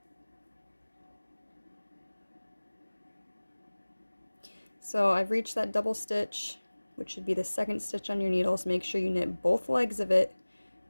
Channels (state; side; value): inverted; both; correlation -1.00